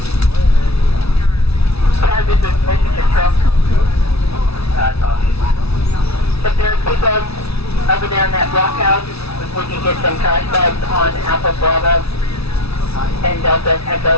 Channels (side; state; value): right; late; 0.78 ms